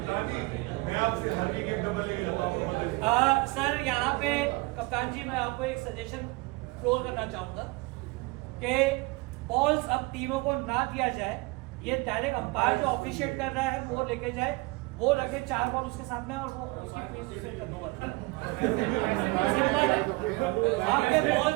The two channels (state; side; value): quieter; left; 24.8 dB